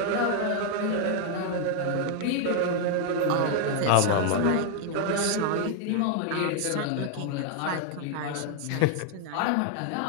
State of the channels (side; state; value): both; different; correlation 0.00